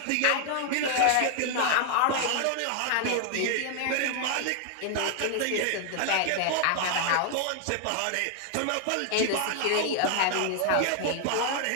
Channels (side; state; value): both; different; correlation 0.00